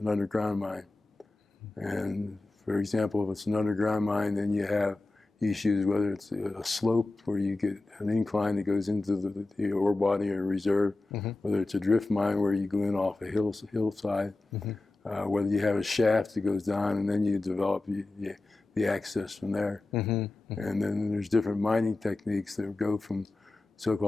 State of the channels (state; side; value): quieter; right; 3.0 dB